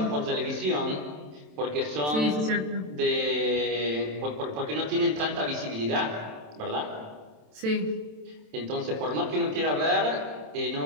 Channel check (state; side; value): late; left; 27 ms